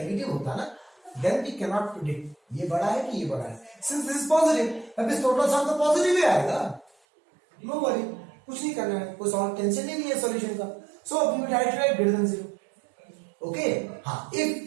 होता ना then we cannot predict ये बड़ा है कि ये बड़ा है, since this is positive अब इस टोटल सम तो पॉजिटिव ही आएगा, नो वरी, कुछ नहीं करना है, कोई सॉल्व टेंशन ही नहीं है सॉल्यूशन का। So we will write greater than 0। Okay हाँ,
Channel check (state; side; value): drops out; left; at 6.9 s